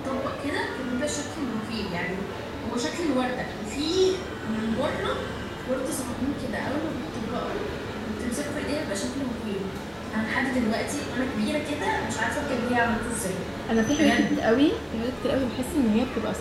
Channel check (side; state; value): both; identical; correlation 1.00